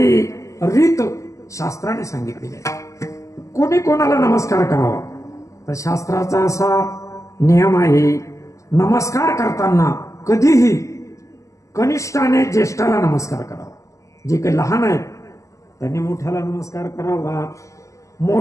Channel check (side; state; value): right; late; 0.16 ms